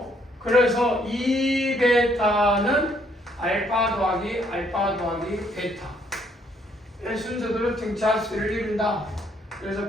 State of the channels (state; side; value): normal; both; correlation 0.68